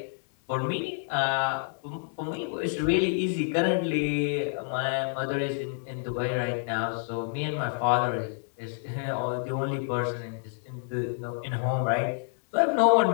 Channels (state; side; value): silent; right; 59 dB below the other